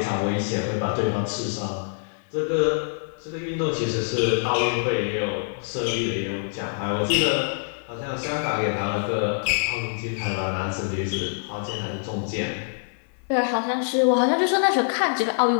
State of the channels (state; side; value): silent; right; digital silence